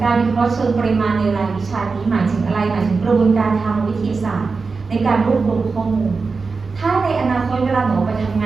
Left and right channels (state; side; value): quieter; left; 4.5 dB